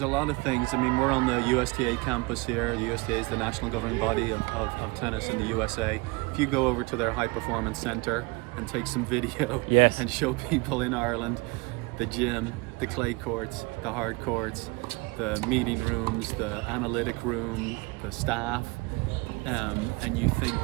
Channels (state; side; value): quieter; left; 26.1 dB